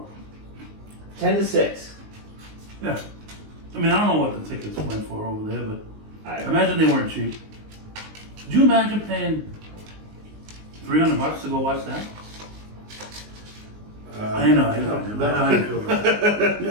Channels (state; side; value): late; left; 19 ms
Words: 10-6. Yeah. I mean, I don't know what the tickets went for over there, but I I imagine they weren't cheap. Could you imagine paying $300 to go watch that? I know. I know,